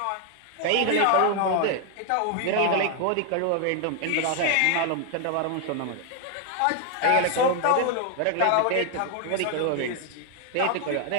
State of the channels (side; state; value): both; different; correlation 0.00